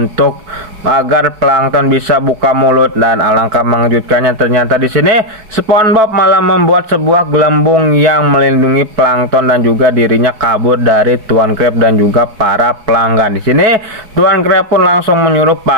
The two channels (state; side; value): late; left; 4.5 ms